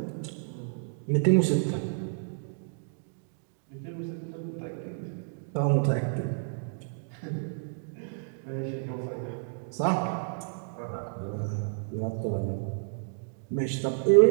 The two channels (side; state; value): left; silent; digital silence